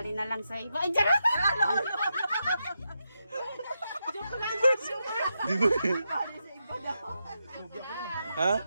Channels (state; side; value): inverted; both; correlation -0.85